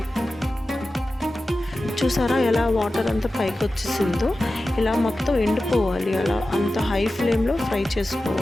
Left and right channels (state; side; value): normal; both; correlation 0.94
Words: చూసారా ఎలా వాటర్ అంతా పైకి వచ్చేసిందో, ఇలా మొత్తం ఎండిపోవాలి. అలా అంత హై ఫ్లేమ్లో ఫ్రై